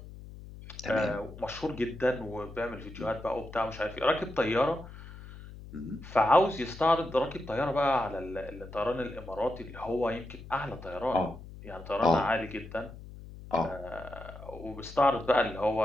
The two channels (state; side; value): noise; left; hum, 15 dB below the sound